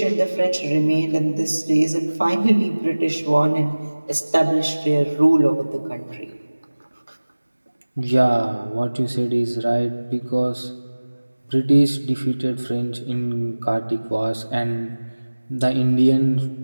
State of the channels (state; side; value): inverted; both; correlation -1.00